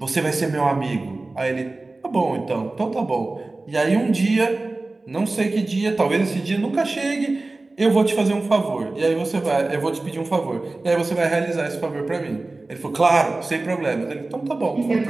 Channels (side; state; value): left; quieter; 3.2 dB